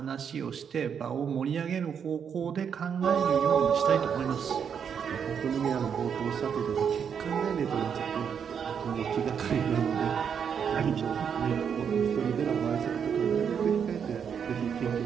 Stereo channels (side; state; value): left; quieter; 7.4 dB